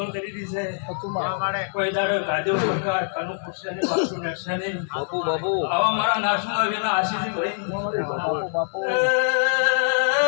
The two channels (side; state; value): right; silent; digital silence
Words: કરી દી છે કોઈ દાડો ગાજો સરકાર કનુ પૂછશે ને બાપુ નક્ષે ને બાપુ આવા મારા નાસુના વેના આશી છે ભાઈ